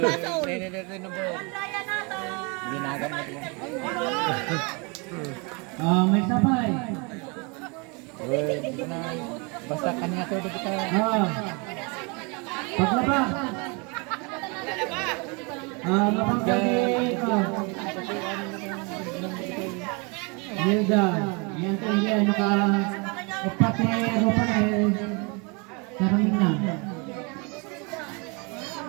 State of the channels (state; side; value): quieter; left; 31.0 dB